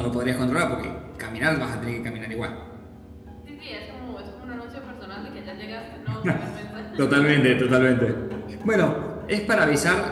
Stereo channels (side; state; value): both; identical; correlation 1.00